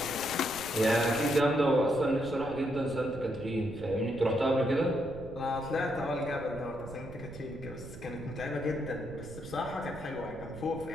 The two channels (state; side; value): noise; right; rumble, 15 dB below the sound